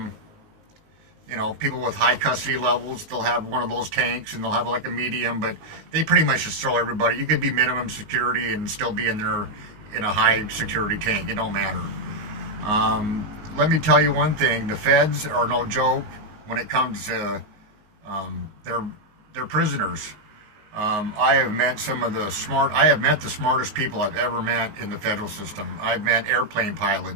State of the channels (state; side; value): late; left; 19 ms